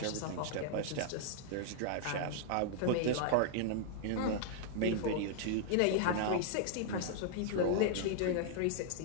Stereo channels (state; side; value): different; both; correlation -0.01